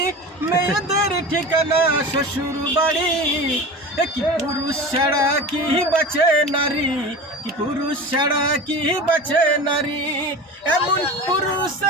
মেয়েদের ঠিকানা শ্বশুর বাড়ি। কি পুরুষ ছাড়া কি বাঁচে নারী, কি পুরুষ ছাড়া কি বাঁচে নারী, এমন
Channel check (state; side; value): normal; both; correlation 0.32